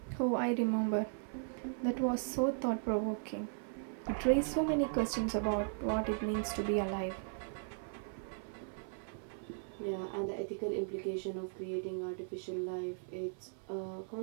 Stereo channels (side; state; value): left; silent; 53 dB below the other